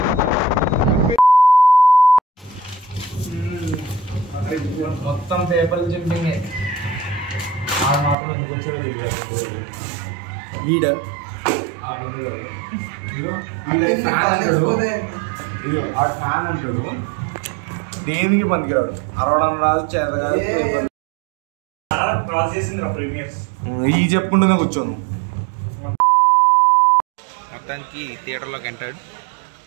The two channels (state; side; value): drops out; left; at 8.2 s